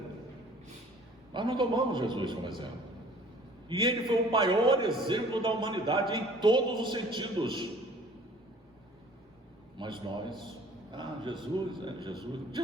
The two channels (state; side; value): normal; both; correlation 0.51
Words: Nós não tomamos Jesus como exemplo. E ele foi o maior exemplo da humanidade em todos os sentidos. Mas nós,